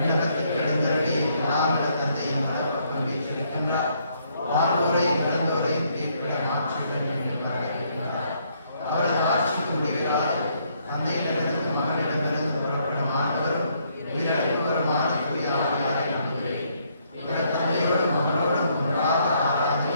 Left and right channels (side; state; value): both; inverted; correlation -0.70